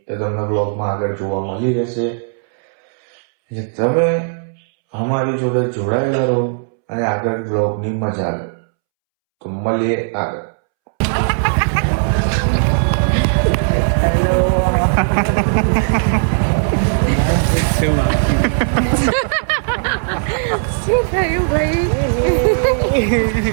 એ તમને બ્લોગમાં આગળ જોવા મળી રહેશે. તમે અમારી જોડે જોડાયેલા રહો અને આગળ બ્લોગની મજા લો. તો મળીએ આગળ. શું થયું ભાઈ?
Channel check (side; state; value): left; silent; 68 dB below the other